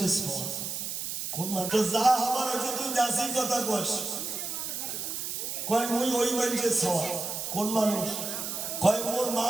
কোন মানুষ যা হবার হয়েছে তুই যাসি কথা কোস, কয় মুই ওই মানুষের সওয়া। কোন মানুষ? কয় মোর মা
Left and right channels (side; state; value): right; noise; hiss, 4 dB below the sound